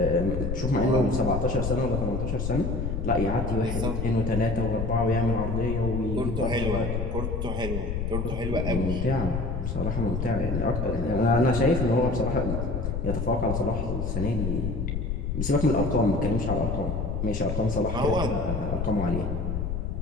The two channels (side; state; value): left; noise; rumble, 2 dB below the sound